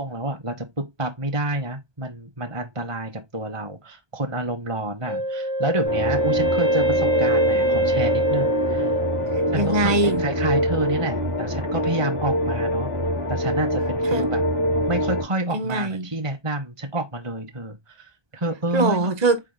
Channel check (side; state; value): left; late; 1.2 ms